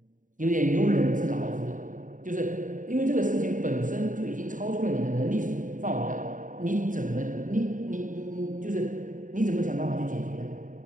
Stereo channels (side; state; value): left; late; 0.38 ms